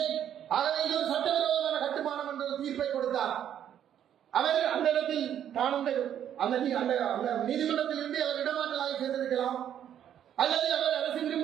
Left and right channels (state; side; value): quieter; left; 10.0 dB